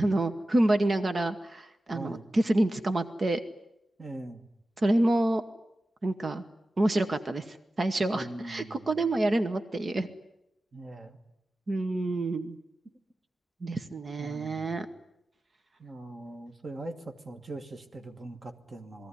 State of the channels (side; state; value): both; normal; correlation 0.94